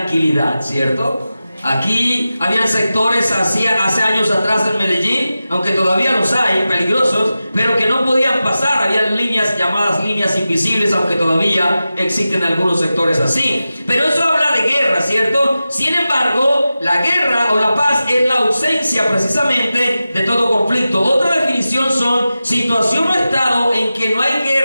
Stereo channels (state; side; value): inverted; both; correlation -0.93